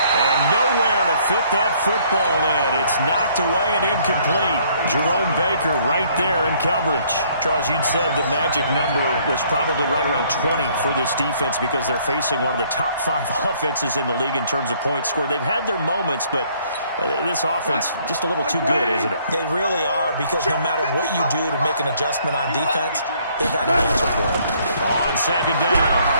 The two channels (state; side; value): inverted; both; correlation -0.63